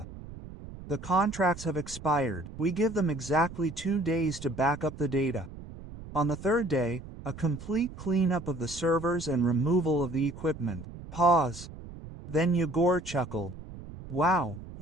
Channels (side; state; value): right; noise; rumble, 14 dB below the sound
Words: The contracts have expired. We give them exactly 2 days to back up the data. On the 3rd day, a complete cleanup of the servers and removal of the equipment." Pause. Then Igor chuckled. "Wow,